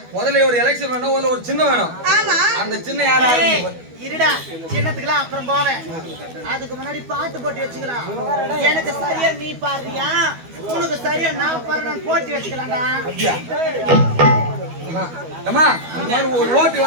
முதல்ல ஒரு எலெக்ஷன் வேணும், ஒரு சின்ன வேணும். ஆமா அந்த சின்ன யாரா இருடா, சின்னத்துக்குலாம் அப்புறம் போவேன். அதுக்கு முன்னாடி பாட்டு போட்டி வச்சுக்கலாம். எனக்கு சரியா நீ பாடுறியா, உனக்கு சரியா நான் பாடுறேன் போட்டி வச்சுக்கலாம்டா. அம்மா ஒரு ஓட்டு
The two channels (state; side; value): late; left; 12 ms